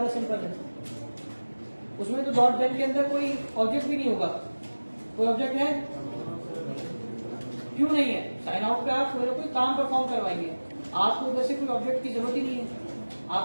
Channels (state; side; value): inverted; both; correlation -1.00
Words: सिंपल है। उसमें तो डॉट देन के अंदर कोई ऑब्जेक्ट भी नहीं होगा, कोई ऑब्जेक्ट है? क्यों नहीं है? साइन आउट पे आप मेरे कोई काम परफॉर्म करवाइए, आपको उधर से कोई ऑब्जेक्ट की जरूरत ही नहीं है,